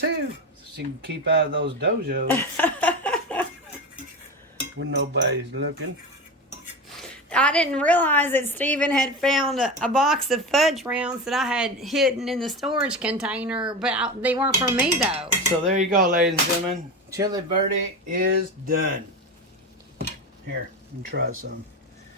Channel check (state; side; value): normal; both; correlation 0.23